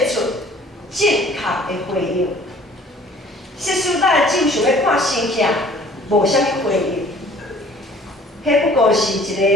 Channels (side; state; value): both; normal; correlation 0.53